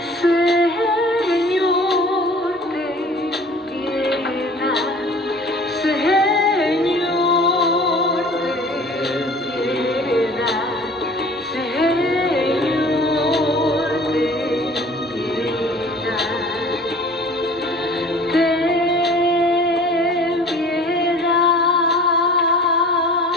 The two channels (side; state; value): both; normal; correlation 0.46